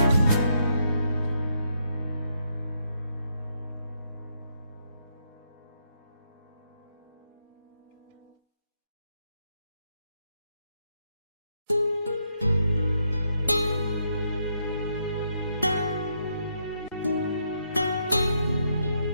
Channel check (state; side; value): inverted; both; correlation -0.77